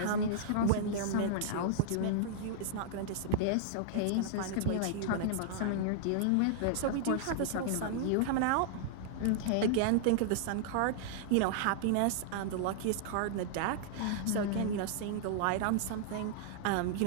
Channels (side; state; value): both; different; correlation -0.01